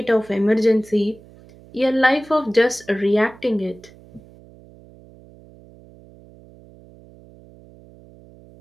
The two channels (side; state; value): right; noise; hum, 24 dB below the sound